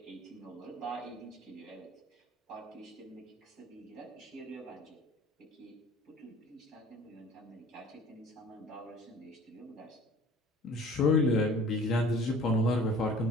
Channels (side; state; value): both; normal; correlation 0.48